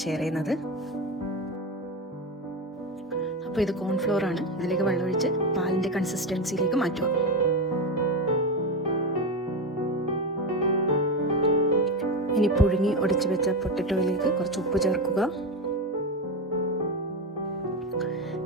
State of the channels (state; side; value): normal; both; correlation 0.16